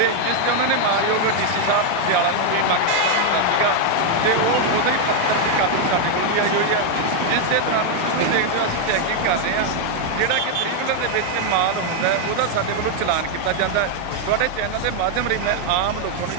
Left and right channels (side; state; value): both; different; correlation 0.00